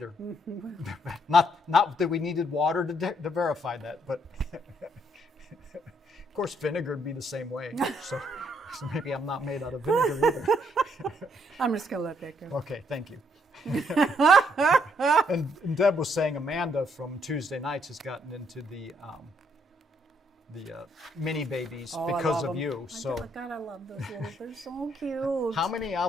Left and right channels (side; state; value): both; normal; correlation 0.71